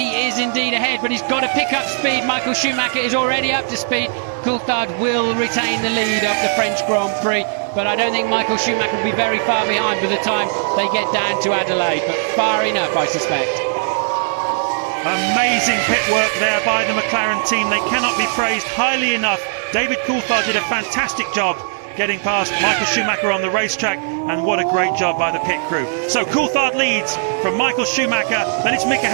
is indeed ahead, but he's got to pick up speed. Michael Schumacher is already up to speed. Coulthard will retain the lead of the French Grand Prix, but I don't think Michael Schumacher will be very far behind by the time they get down to Adelaide, but far enough, I suspect. Amazing pit work there by the McLaren team. They cannot be praised highly enough. David Coulthard did a fantastic job getting past Michael Schumacher on the racetrack, and what a great job by the pit crew. So Coulthard leads from Michael Schumacher, then it's Mika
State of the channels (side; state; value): left; silent; digital silence